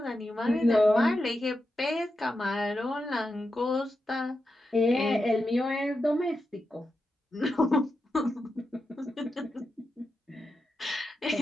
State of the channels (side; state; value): both; normal; correlation 0.88